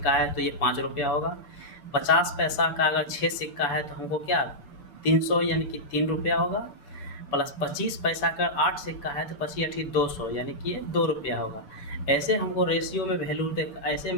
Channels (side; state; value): right; late; 6.8 ms